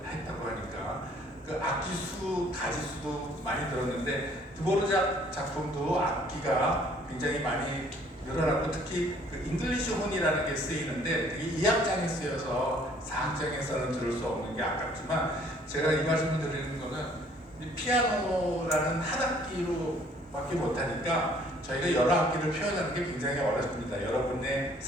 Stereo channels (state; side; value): normal; both; correlation 0.59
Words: 했다고 하니까 그 악기 수, 가지 수도 많이 들었는데 드보르작 작품도 악기가 굉장히 많이 늘어났고 특히 그 잉글리시 혼이라는 게 쓰이는데 그게 2악장에 쓰여서 4악장에서는 들을 수 없는 게 아깝지만 제가 이 말씀을 드리는 거는 피아노라는 한 악기로밖에 못하니까 저희가 여러 악기를 표현하는 게 굉장히 어렵습니다. 여러분의